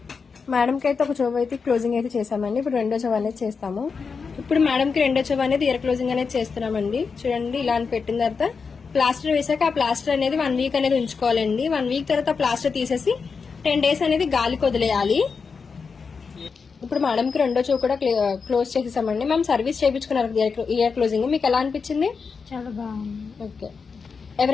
మేడంకి అయితే ఒక చెవి అయితే క్లోజింగ్ అయితే చేసామండి. ఇప్పుడు 2వ చెవి అనేది చేస్తాము. ఇప్పుడు మేడంకి 2వ చెవి అనేది ఇయర్ క్లోజింగ్ అనేది చేస్తున్నామండి. చూడండి ఇలా అని పెట్టిన తర్వాత ప్లాస్టర్ వేసాక ఆ ప్లాస్టర్ అనేది 1 వీక్ అనేది ఉంచుకోవాలండి. 1 వీక్ తర్వాత ప్లాస్టర్ తీసేసి 10 డేస్ అనేది గాలికి వదిలేయాలి. ఇప్పుడు మేడంకి 2వ చెవి కూడా క్లోజ్ చేసేసామండి. మేము సర్వీస్ చేయించుకున్నారు ఇయర్ క్లోజింగ్. మీకు ఎలా అనిపించింది? చాలా బాగుంది. ఓకే,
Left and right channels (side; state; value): right; quieter; 5.3 dB